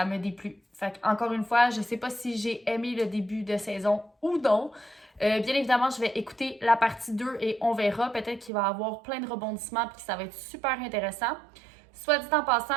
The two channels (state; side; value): drops out; left; at 8.5 s